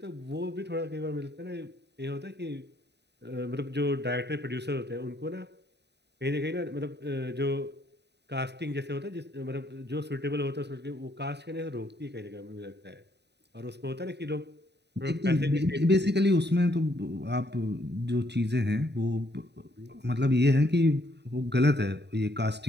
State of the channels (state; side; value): late; left; 0.50 ms